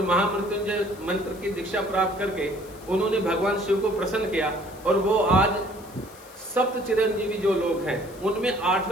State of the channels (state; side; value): noise; left; hiss, 22 dB below the sound